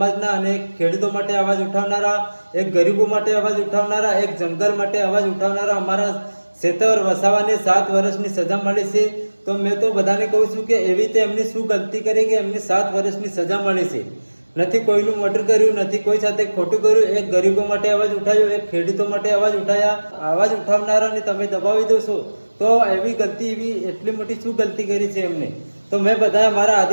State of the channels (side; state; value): both; inverted; correlation -1.00